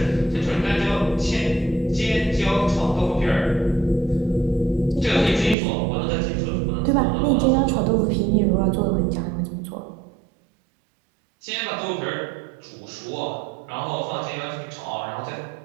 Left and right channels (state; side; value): drops out; left; at 5.6 s